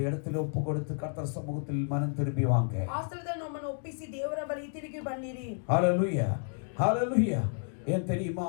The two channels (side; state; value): right; silent; digital silence